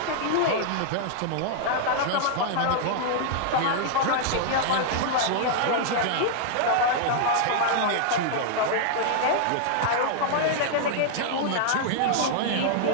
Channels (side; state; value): both; different; correlation -0.01